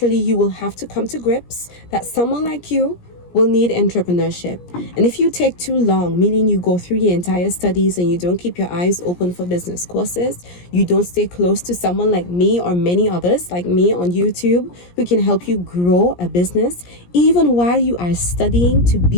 you will have to come to grips that someone like you will need entrepreneurship. And if you take too long, meaning you go through your entire studies and you don't keep your eyes open for business courses, you don't stay close to someone like me or many others like me on YouTube who can help you grow a business, even while you are studying to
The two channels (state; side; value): late; right; 17 ms